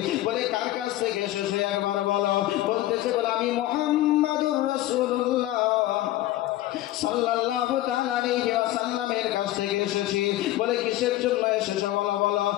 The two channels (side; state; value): right; quieter; 15.4 dB